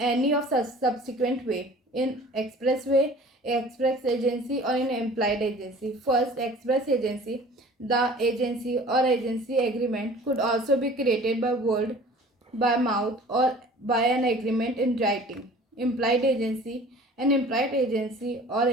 of such subsequent way: in express way, express agency, or in implied agency. First, express agency. The agency or agency agreement could also be created by word, by mouth, or by an agreement in writing. Implied agency. An implied agency or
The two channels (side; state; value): both; normal; correlation 0.46